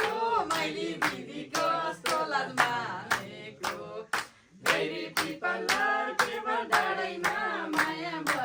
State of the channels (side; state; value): both; identical; correlation 1.00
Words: माइली दिदी कस्तो लाजमा गैरी पिपल के भर डाँडैमा माया